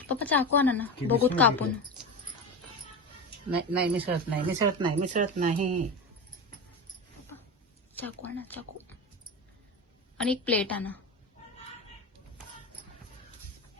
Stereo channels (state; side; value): normal; both; correlation 0.22